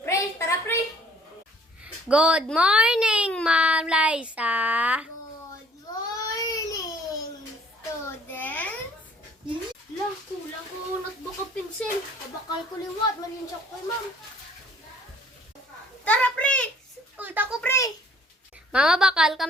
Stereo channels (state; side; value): normal; both; correlation 0.58